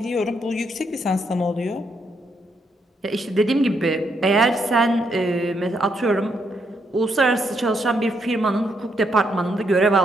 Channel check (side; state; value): both; normal; correlation 0.76